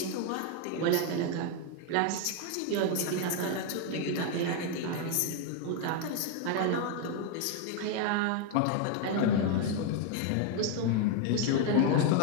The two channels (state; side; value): different; both; correlation 0.01